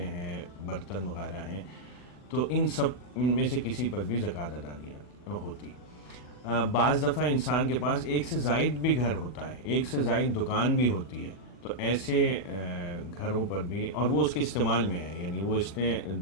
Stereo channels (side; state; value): right; late; 40 ms